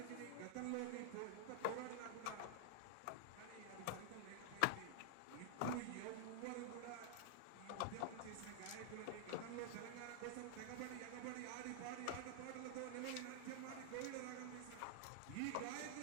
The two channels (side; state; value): both; different; correlation -0.01